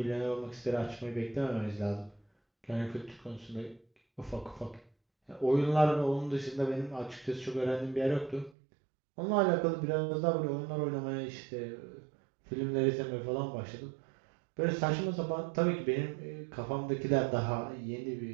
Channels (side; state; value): left; drops out; at 8.5 s